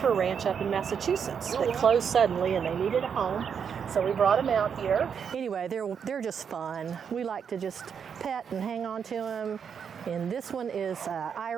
Ranch up in Massachusetts. They closed suddenly and they needed a home. So we brought them out here. Anyway, they're just fun. We like to just pet and hang on to them. And this one is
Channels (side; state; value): left; quieter; 7.1 dB